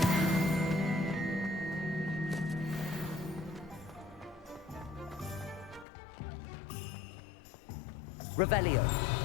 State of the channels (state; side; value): drops out; right; at 5.9 s